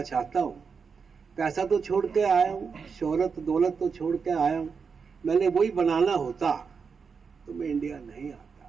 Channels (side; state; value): left; quieter; 5.6 dB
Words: चाहता हूँ। पैसा तो छोड़ के आया हूँ, शोहरत दौलत तो छोड़ के आया हूँ, मैंने वही बनाना होता तो मैं इंडिया नहीं आता।